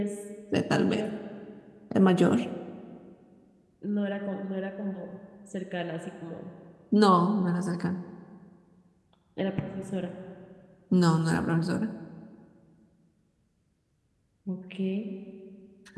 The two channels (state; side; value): identical; both; correlation 1.00